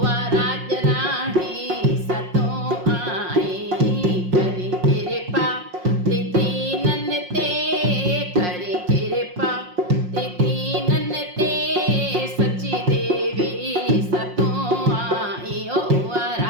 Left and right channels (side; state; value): left; late; 5.6 ms